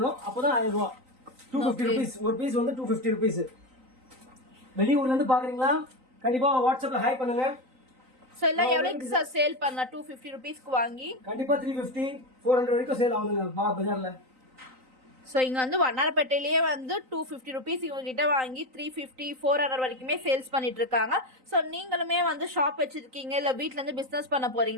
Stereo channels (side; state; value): left; late; 3.9 ms